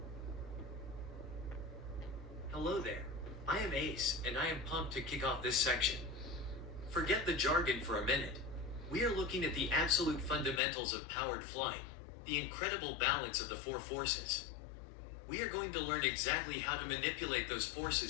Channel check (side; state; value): right; drops out; at 10.6 s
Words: Hello there, I am Ace, and I am pumped to kick off this section. Forget the jargon for a minute. We are looking at the absolute fundamentals of powered flying, the incredible balance of the four forces. We are going to learn exactly how to manipulate those